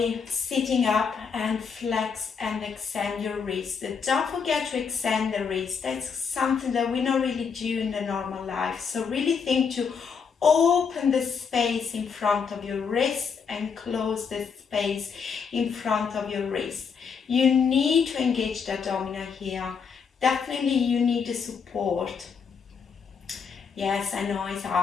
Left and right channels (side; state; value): right; quieter; 6.1 dB